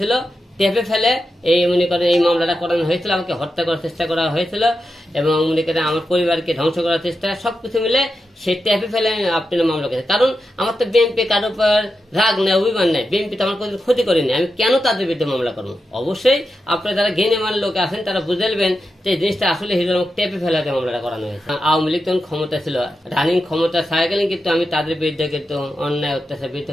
টেপে ফেলে এই মনে করেন এই মামলাটা করানো হয়েছিল। আমাকে হত্যা করার চেষ্টা করা হয়েছিল এবং মনে করেন আমার পরিবারকে ধ্বংস করার চেষ্টা, সবকিছু মিলে সে টেপে ফেলে আপনার মামলা করেছে। কারণ আমার তো বিএনপি কারোর উপর রাগ নেই, অভিমান নেই, বিএনপি তো আমার কোনো ক্ষতি করেনি, আমি কেন তাদের বিরুদ্ধে মামলা করবো? অবশ্যই আপনারা যারা জ্ঞানীমান লোক আছেন তারা বুঝেলবেন যে এই জিনিসটা আসলে হিরো টেপে ফেলাতে মামলাটা করানো হয়েছে। আওয়ামী লীগ তখন ক্ষমতা ছিল, রানিং ক্ষমতা থাকাকালীন কিন্তু আমি তাদের বিরুদ্ধে কিন্তু অন্যায় অত্যাচার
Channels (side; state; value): both; normal; correlation 0.89